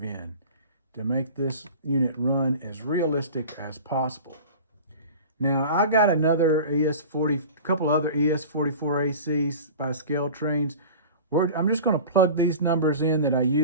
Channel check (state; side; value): inverted; both; correlation -0.36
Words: in to make this unit run as realistic as possible. Now, I got another couple other ES44ACs by ScaleTrains. I'm just going to plug these numbers in that I